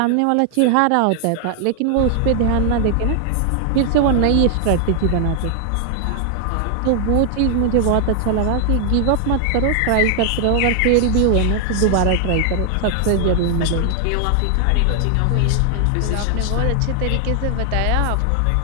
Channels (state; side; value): different; both; correlation 0.00